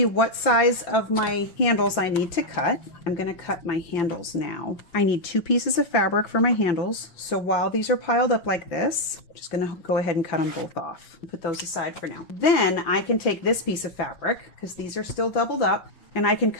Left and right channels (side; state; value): right; late; 5.9 ms